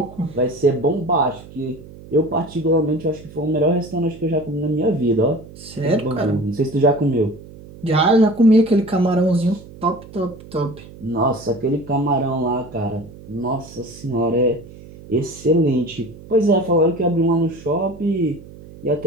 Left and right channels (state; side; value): noise; right; hum, 18 dB below the sound